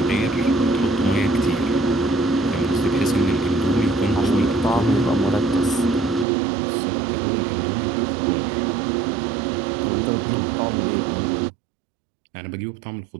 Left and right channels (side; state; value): left; drops out; at 6.2 s